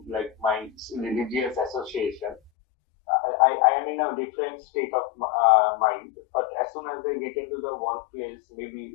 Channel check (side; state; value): right; drops out; at 2.5 s